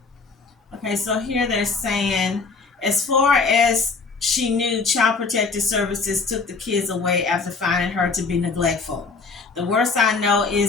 Okay, so here they're saying, as far as she knew, Child Protective Services took the kids away after finding her to be neglectful. The worst I know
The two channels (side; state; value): right; quieter; 4.5 dB